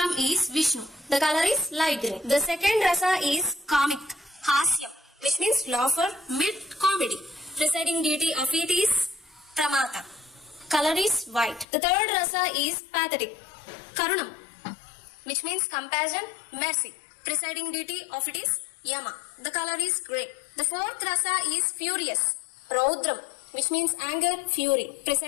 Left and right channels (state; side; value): drops out; right; at 11.7 s